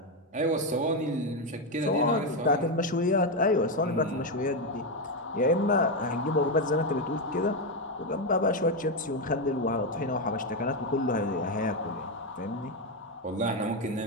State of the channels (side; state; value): both; normal; correlation 0.07